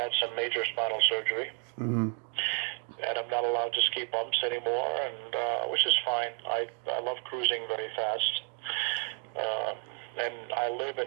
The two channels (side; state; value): left; quieter; 35.5 dB